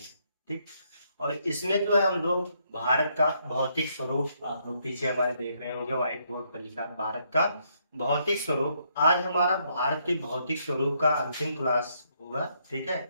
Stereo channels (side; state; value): both; inverted; correlation -0.73